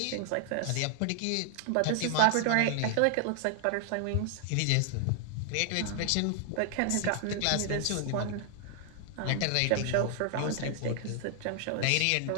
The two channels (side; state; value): both; different; correlation 0.00